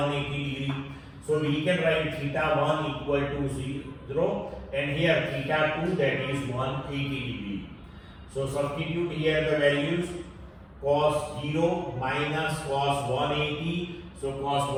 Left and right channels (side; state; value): both; identical; correlation 1.00